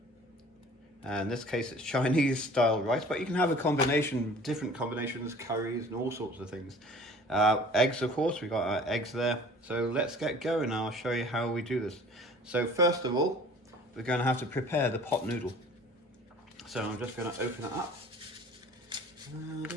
In this case it's Chinese style rice, but you can have a combination, different combinations, curries and all sorts of things. Eggs, of course, we've got our eggs there. So let's get going. I'll show you how we do this. So first of all, we're going to have to prepare the pot noodle. So I'm just going to open it up.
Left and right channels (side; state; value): both; normal; correlation 0.48